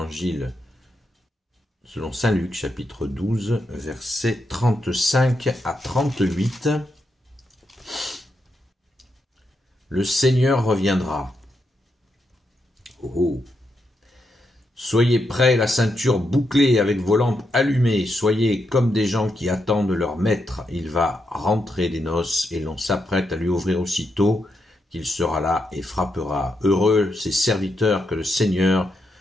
selon Saint Luc, chapitre 12, versets 35 à 38. Le Seigneur reviendra. Oh. Soyez prêts, la ceinture bouclée avec vos lampes allumées. Soyez comme des gens qui attendent leur maître. Il va rentrer des noces et l'on s'apprête à lui ouvrir aussitôt qu'il sera là et frappera. Heureux ces serviteurs que le Seigneur,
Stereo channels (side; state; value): both; normal; correlation 0.82